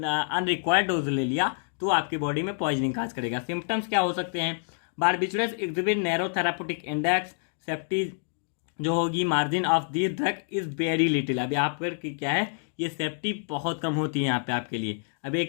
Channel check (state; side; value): silent; right; 60 dB below the other